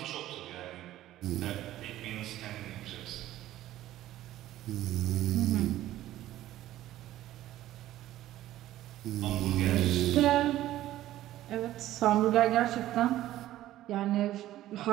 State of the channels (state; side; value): quieter; left; 14.2 dB